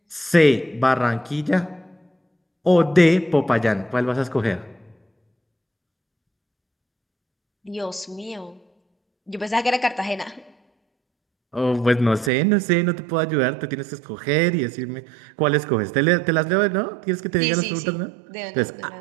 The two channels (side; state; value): left; drops out; at 12.3 s